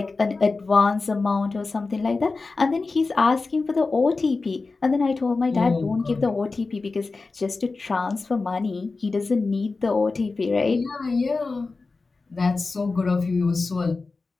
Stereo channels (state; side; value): quieter; right; 3.9 dB